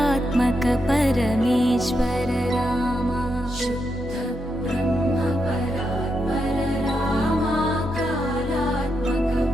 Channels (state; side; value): normal; both; correlation 0.83